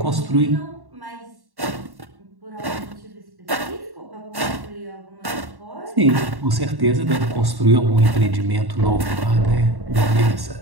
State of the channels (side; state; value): left; late; 1.1 ms